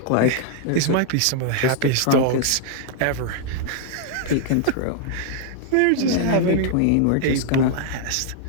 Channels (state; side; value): different; both; correlation -0.01